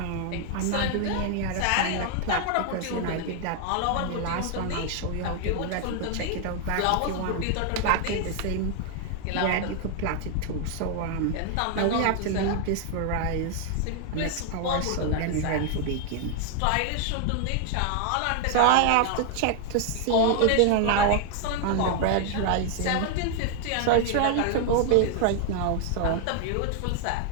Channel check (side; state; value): both; different; correlation 0.00